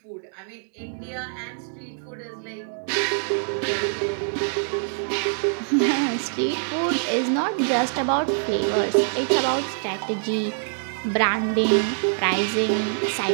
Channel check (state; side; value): silent; left; digital silence